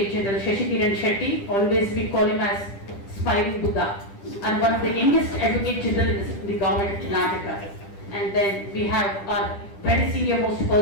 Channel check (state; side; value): late; right; 10 ms